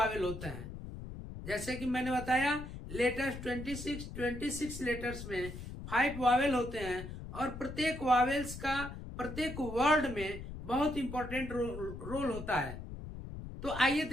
होता है। जैसे कि मैंने बताया लेटर्स 26 लेटर्स में 5 वावेल होते हैं और प्रत्येक वावेल्स का प्रत्येक वर्ड में बहुत इंपॉर्टेंट रोल होता है। तो आइए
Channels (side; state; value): left; noise; rumble, 10 dB below the sound